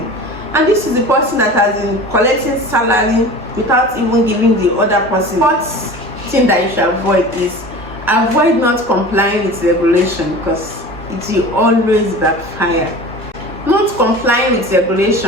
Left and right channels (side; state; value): both; normal; correlation 0.37